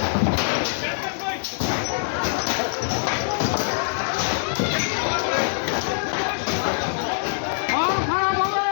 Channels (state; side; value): silent; right; digital silence